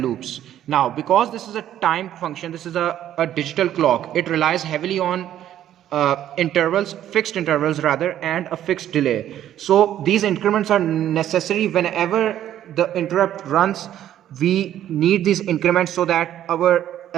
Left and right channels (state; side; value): quieter; left; 11.5 dB